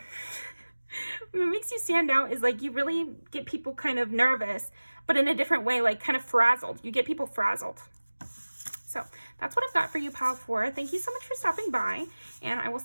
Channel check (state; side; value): inverted; both; correlation -1.00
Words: What makes you stand out is like you really get people kind of nervous, but in a different way, like kind of frazzled. You get people frazzled. So that's what I've got for you, Pal 4. Thank you so much for stopping by, and I will